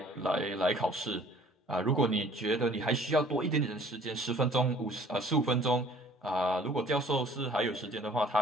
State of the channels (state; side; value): normal; both; correlation 0.53